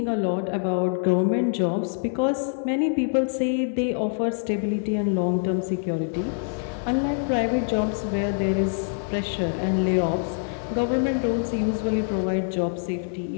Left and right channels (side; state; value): right; silent; 62 dB below the other